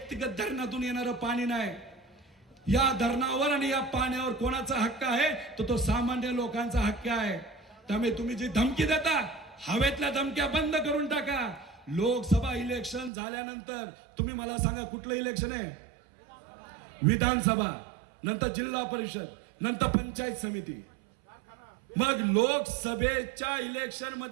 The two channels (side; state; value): left; drops out; at 13.1 s